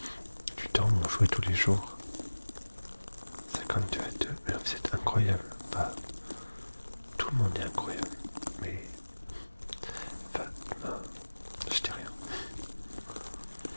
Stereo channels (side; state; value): both; inverted; correlation -1.00